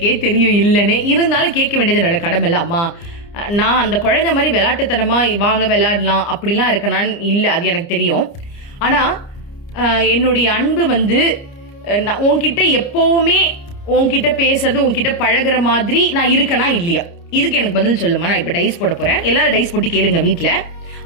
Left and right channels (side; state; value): right; late; 30 ms